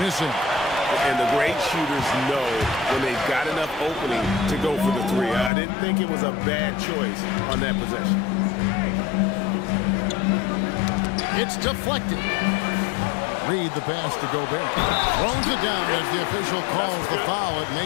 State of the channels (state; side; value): drops out; right; at 5.5 s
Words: missing. And the great shooters know when they've got enough opening to go for the 3. I didn't think it was a bad choice on that possession. It's deflected. Reed the pass to Gobert. Throws it down as the official calls the foul. It